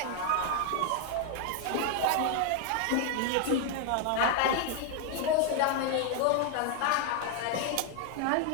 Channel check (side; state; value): both; different; correlation 0.00